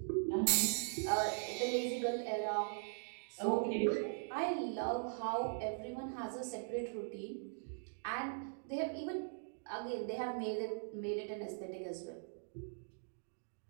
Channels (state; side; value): silent; left; digital silence